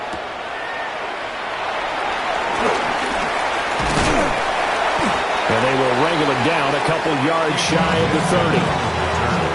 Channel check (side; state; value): both; identical; correlation 1.00